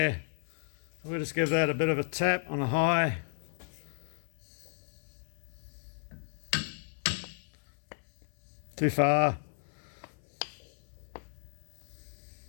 We'll just give that a bit of a tap on the high. Too far.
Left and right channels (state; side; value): silent; right; 55 dB below the other